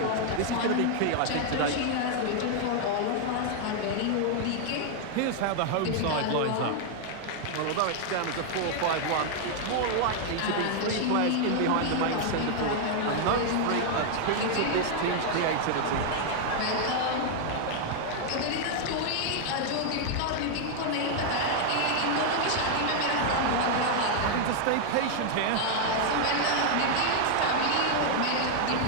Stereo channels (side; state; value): both; different; correlation 0.00